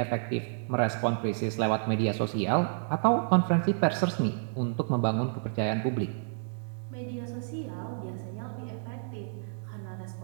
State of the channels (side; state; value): left; silent; digital silence